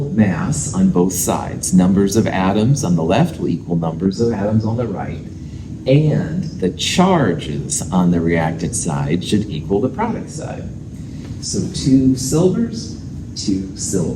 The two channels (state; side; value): identical; both; correlation 1.00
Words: mass on both sides. Numbers of atoms on the left will equal numbers of atoms on the right, and the charges on the reactant side should equal the product side. So 2 silvers, 2